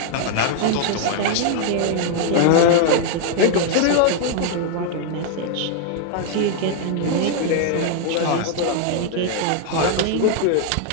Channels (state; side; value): different; both; correlation 0.00